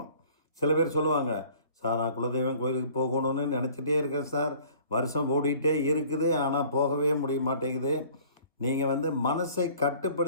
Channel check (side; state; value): both; inverted; correlation -0.52